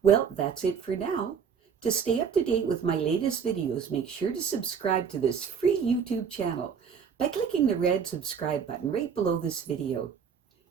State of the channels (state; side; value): quieter; left; 6.8 dB